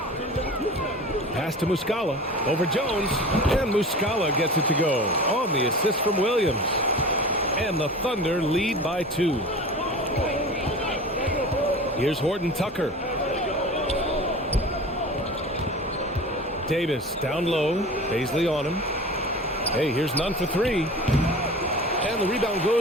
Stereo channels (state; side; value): normal; both; correlation 0.36